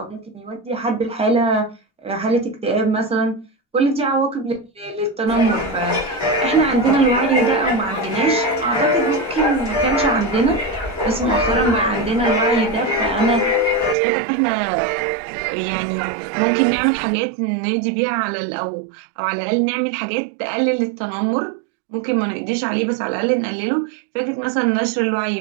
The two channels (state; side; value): drops out; left; at 14.0 s